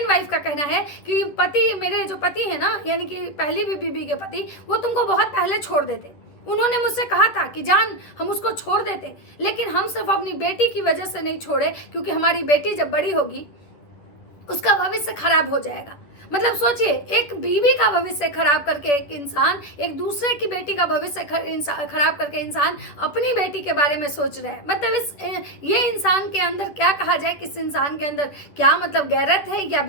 वाइफ का कहना है कि पति, मेरे जो पति है ना, यानी कि पहली बीबी के पति, वो तुमको बहुत पहले छोड़ देते। उन्होंने मुझसे कहा था कि जान हम उसको छोड़ देते, लेकिन हम सिर्फ अपनी बेटी की वजह से नहीं छोड़े, क्योंकि हमारी बेटी जब बड़ी होगी उसका भविष्य खराब हो जाएगा। मतलब सोचिए, एक बीवी का भविष्य खराब करके एक इंसान, एक दूसरे की बेटी का भविष्य खराब करके इंसान अपनी बेटी के बारे में सोच रहा है। मतलब ये इंसान के अंदर क्या कहा जाए, किस इंसान के अंदर क्या मतलब गैरत है या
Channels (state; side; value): late; right; 10 ms